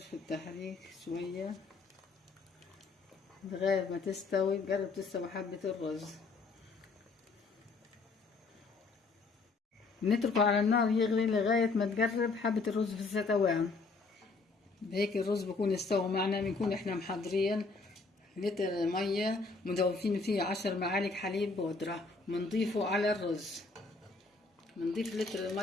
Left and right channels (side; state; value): right; quieter; 4.0 dB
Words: التحريك شوية لغاية ما تستوي، تقرب تستوي حبة الرز. نتركه على النار يغلي لغاية ما تقرب حبة الرز في الستوان. بهيك الرز بكون استوى معنا. بنكون احنا محضرين لتر مية مضوفين فيه 10 معالق حليب بودرة، بنضيفه على الرز. بنضيف لتر